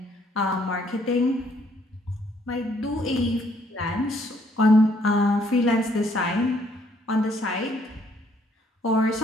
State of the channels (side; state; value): both; normal; correlation 0.67